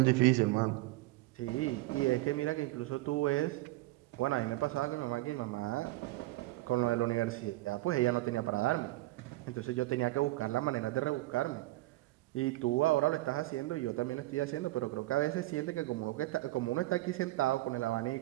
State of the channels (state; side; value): quieter; left; 18.6 dB